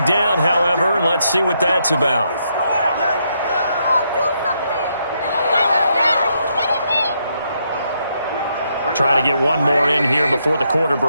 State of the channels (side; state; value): both; inverted; correlation -0.77